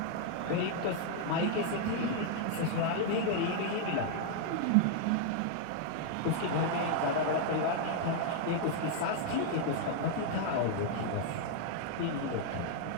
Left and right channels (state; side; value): different; both; correlation 0.00